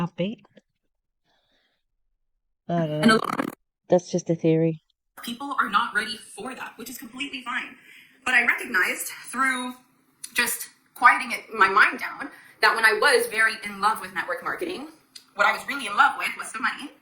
I don't know. That's just a theory. People are not ready for that, which is completely fine. But I recognized through just quieting my mind down that when I was very in love with network marketing, what I was really in love with was the money.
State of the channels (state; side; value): identical; both; correlation 1.00